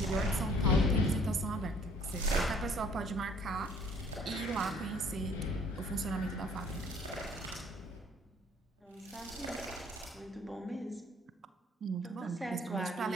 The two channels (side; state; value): both; normal; correlation 0.58